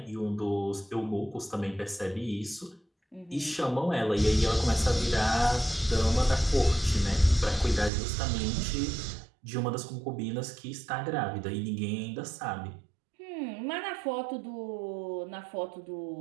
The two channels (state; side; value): drops out; left; at 7.9 s